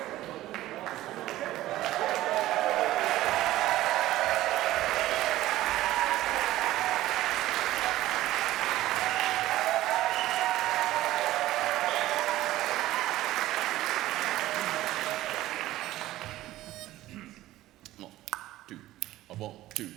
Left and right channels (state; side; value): quieter; left; 15.5 dB